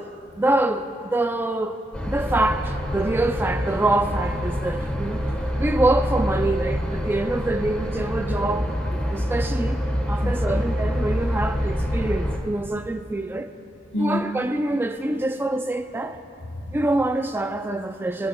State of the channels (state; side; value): normal; both; correlation 0.85